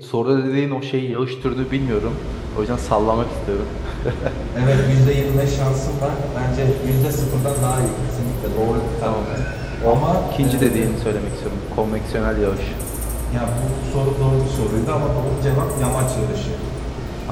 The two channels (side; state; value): both; identical; correlation 1.00